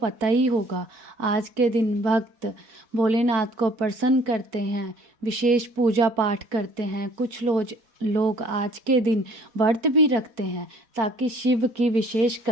ही होगा। आज के दिन भक्त भोलेनाथ को प्रसन्न करते हैं, विशेष पूजा पाठ करते हैं। कुछ लोग आज के दिन व्रत भी रखते हैं ताकि शिव की विशेष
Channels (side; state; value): left; late; 4.6 ms